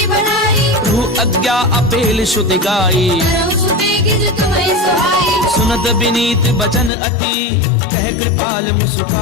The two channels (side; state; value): right; drops out; at 6.9 s